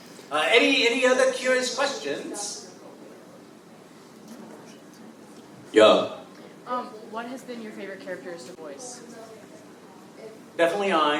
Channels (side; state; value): both; identical; correlation 1.00